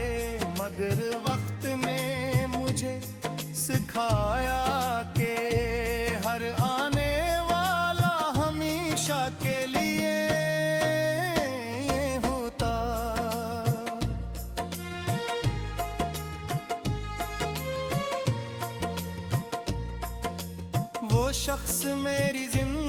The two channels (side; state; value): both; identical; correlation 1.00